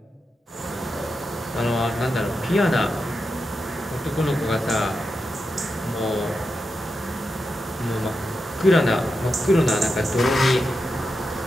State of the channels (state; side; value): normal; both; correlation 0.88